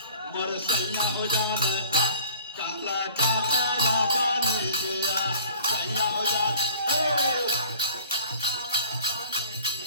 मोर सैया हो जाने काला काका बाबा नहीं गया सैया हो जाने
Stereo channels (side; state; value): both; inverted; correlation -0.48